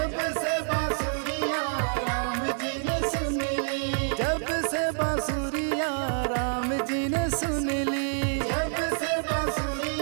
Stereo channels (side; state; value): left; silent; digital silence